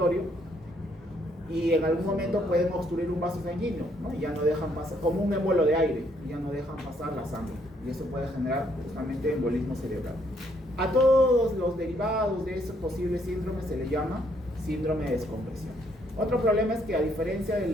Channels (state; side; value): normal; both; correlation 0.70